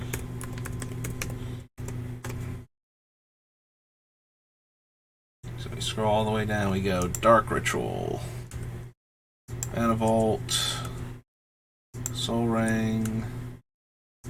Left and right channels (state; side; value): identical; both; correlation 1.00